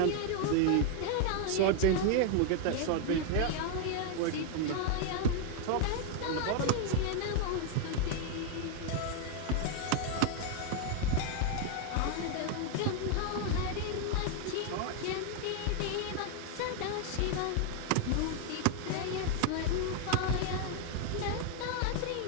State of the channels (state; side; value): different; both; correlation 0.00